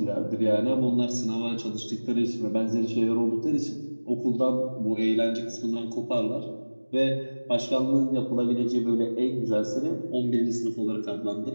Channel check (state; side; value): inverted; both; correlation -1.00